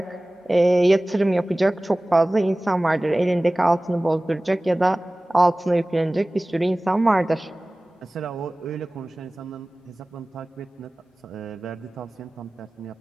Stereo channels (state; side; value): normal; both; correlation 0.98